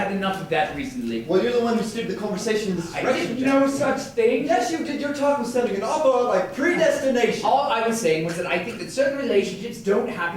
enough of that recently. Well, you're the one who steered the conversation in this I direction, did Jack. no such thing. Yes, you did. Your talk was sounding an awful lot like predestination. All I was saying was that I think that certain relationships don't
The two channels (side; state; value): both; identical; correlation 1.00